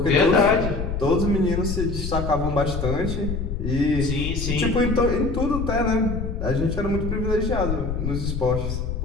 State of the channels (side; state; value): left; noise; rumble, 3 dB below the sound